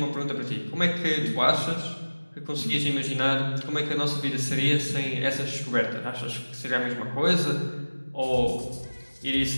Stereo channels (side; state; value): both; inverted; correlation -1.00